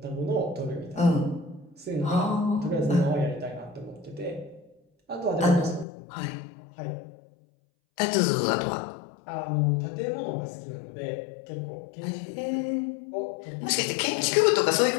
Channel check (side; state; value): right; drops out; at 5.9 s